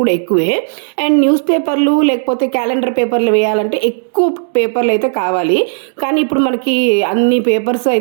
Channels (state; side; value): silent; left; digital silence